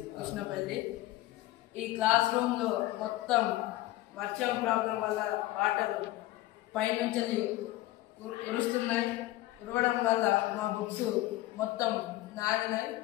కృష్ణపల్లి. ఈ క్లాస్ రూమ్లో మొత్తం వర్షం ప్రాబ్లం వల్ల వాటర్ పైనుంచి కురుస్తున్నాయి. కురవడం వల్ల మా బుక్స్ మొత్తం నానినాయి.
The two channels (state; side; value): quieter; right; 16.8 dB